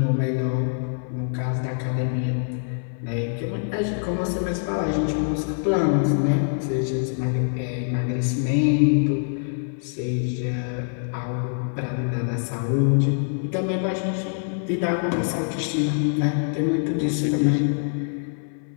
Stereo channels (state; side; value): silent; right; 57 dB below the other